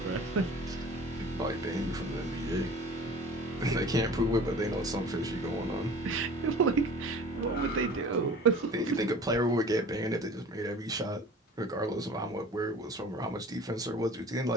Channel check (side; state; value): both; normal; correlation 0.43